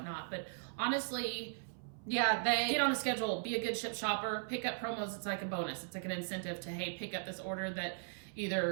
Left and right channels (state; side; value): silent; left; 52 dB below the other